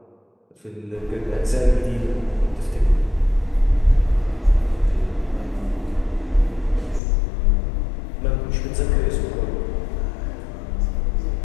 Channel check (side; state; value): right; drops out; at 7.0 s